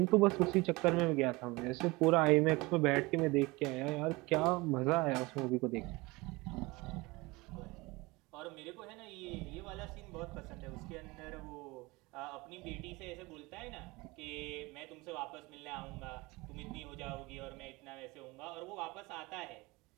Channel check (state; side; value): quieter; left; 23.2 dB